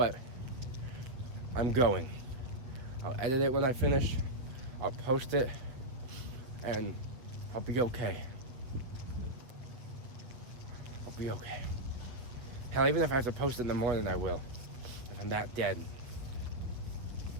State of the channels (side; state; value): left; late; 7.9 ms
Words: I'm going. I'll edit it when I finish, I'll post it, and I'll be okay. I'll be okay. Hell, even if I have to post it in the morning, I will. If I'm that dead.